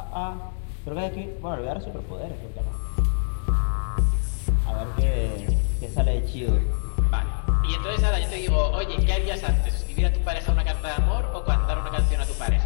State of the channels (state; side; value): silent; right; digital silence